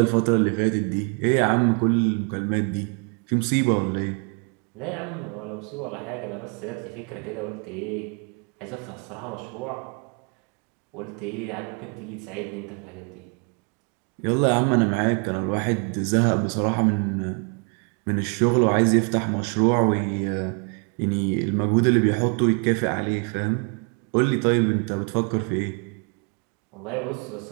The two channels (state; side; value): quieter; left; 37.8 dB